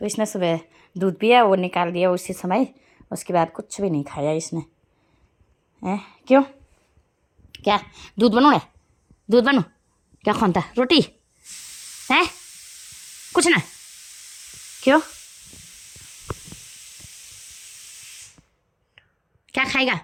तो इसने सुबह दूध पिया, वो निकाल दिया उसी समय, उसके बाद कुछ भी नहीं खाया इसने। क्यों? क्या दूध बनू? दूध बनू क्या खानता? रोटी है? कुछ ना। क्यों? क्या खाएगा?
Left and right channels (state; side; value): identical; both; correlation 1.00